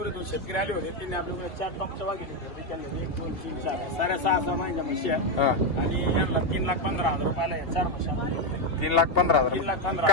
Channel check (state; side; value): late; right; 2.8 ms